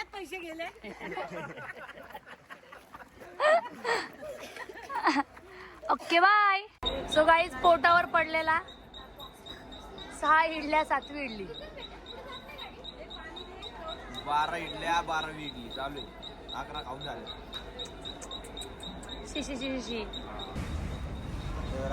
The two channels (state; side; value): identical; both; correlation 1.00